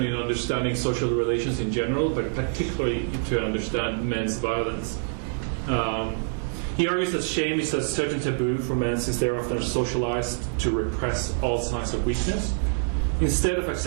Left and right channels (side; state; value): left; silent; 61 dB below the other